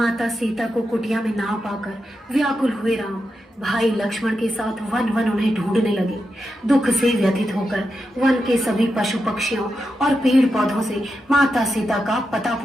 सीता को कुटिया में ना पाकर व्याकुल हुए राम भाई लक्ष्मण के साथ वन वन उन्हें ढूंढने लगे। दुख से व्यथित होकर वन के सभी पशु पक्षियों और पेड़ पौधों से माता सीता का पता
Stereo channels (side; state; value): both; normal; correlation 0.87